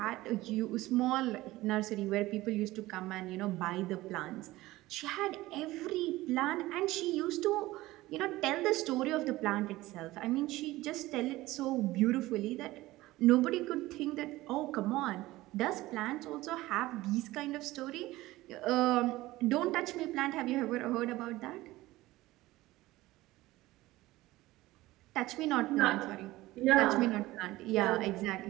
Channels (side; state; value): left; quieter; 18.0 dB